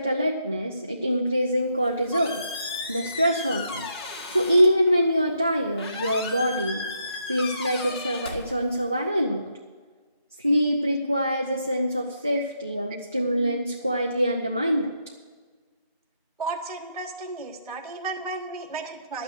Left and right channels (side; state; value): both; inverted; correlation -0.78